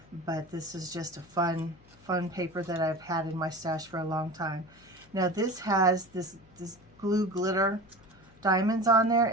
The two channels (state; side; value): noise; left; hum, 27 dB below the sound